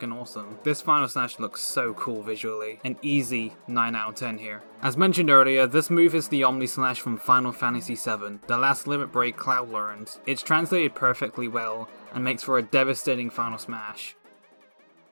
awesome. This final slash looks so cool visually. An easy 9 out of 10 here. As mentioned earlier, this move is the Omni Slash from Final Fantasy VII, the last limit break Cloud learned. It's translated perfectly well and makes for a devastating final smash.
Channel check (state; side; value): inverted; both; correlation -1.00